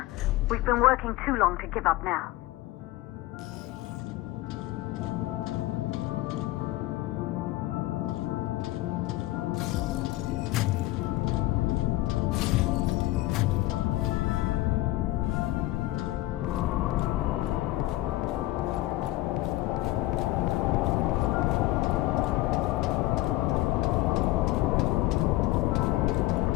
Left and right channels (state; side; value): quieter; right; 17.7 dB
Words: We've been working too long to give up now.